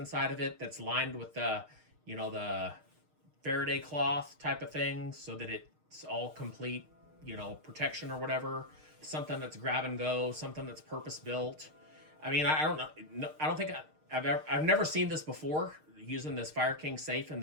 of it that's lined with the Faraday cloth type of thing, so that it's all complete, protection or whatever. Something that's grab and go, something that's purpose built. I mean, I don't know. No, I don't think I've never seen this before, using this Fireking safe in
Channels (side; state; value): left; late; 6.5 ms